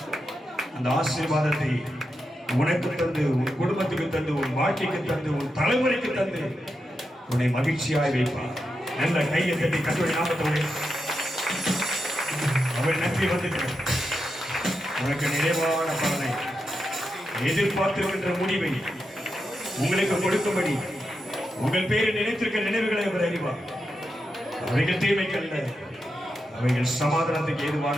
அந்த ஆசீர்வாதத்தை உனக்கு தந்து, உன் குடும்பத்துக்கு தந்து, உன் வாழ்க்கைக்கு தந்து, உன் தலைமுறைக்கு தந்து உன்னை மகிழ்ச்சியாய் வைப்பார். நல்ல கையை தட்டி கர்த்தருடைய நாமத்தோடு அவர் நன்றி வந்துட்டார். உனக்கு நிறைவான பலனை, எதிர்பார்த்திருக்கின்ற முடிவை உங்களுக்கு கொடுக்கும்படி உங்கள் பேரை நினைத்திருக்க நினைவுகளை அவர் அறிவார். அவைகள் தீமைக்கல்ல, அவைகள் சமாதானத்துக்கு ஏதுவான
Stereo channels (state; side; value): normal; both; correlation 0.87